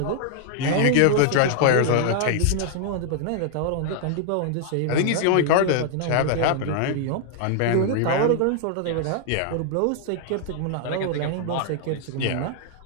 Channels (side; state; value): both; different; correlation 0.00